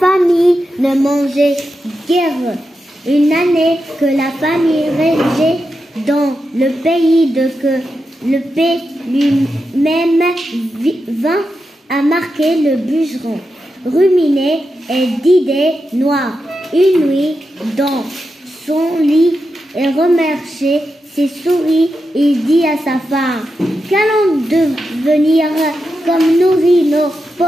ne mangeait guère. Une année que la famille régnait dans le pays le paix lui-même vint à marquer le bûcheron, ruminé et d'idées noires. Une nuit, dans son lit et remerciait ses souris, il dit à sa femme: qu'allons devenir comme nourrir nos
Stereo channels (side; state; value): both; normal; correlation 0.88